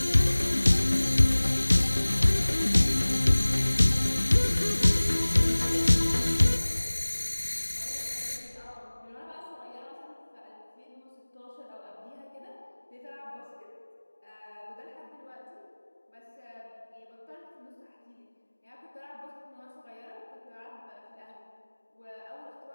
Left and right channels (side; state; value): both; inverted; correlation -1.00